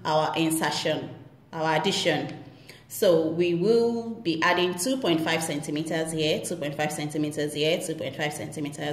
our insertion, our addition. So we will be adding 2.5 centimeters here, 2.5 centimeters here, 2.5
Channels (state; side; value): identical; both; correlation 1.00